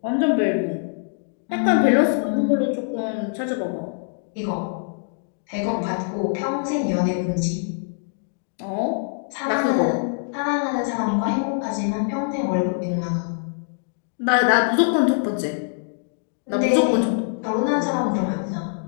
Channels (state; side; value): silent; right; digital silence